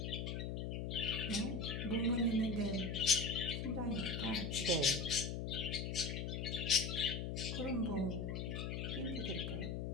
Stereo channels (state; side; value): noise; left; hum, 2 dB below the sound